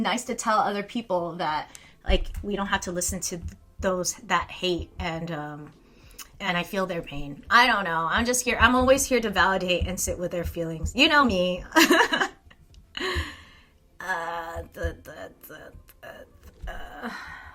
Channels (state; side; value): identical; both; correlation 1.00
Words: to tell other people that, like, we don't have to listen to those that hate and I feel their pain. I don't know. I'm just here. I'm always here to validate and sit with their feelings. You know me.